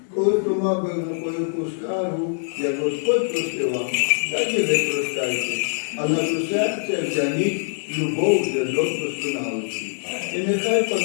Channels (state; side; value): silent; right; 62 dB below the other